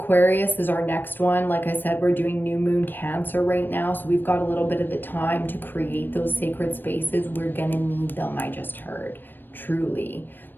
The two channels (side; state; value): right; late; 0.093 ms